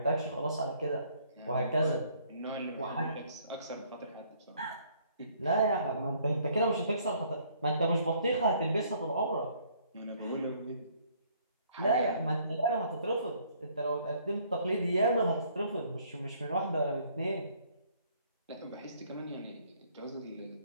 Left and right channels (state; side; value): inverted; both; correlation -0.63